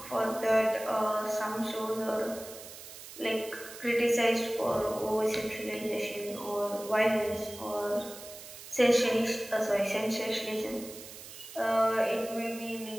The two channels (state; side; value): noise; right; hiss, 14 dB below the sound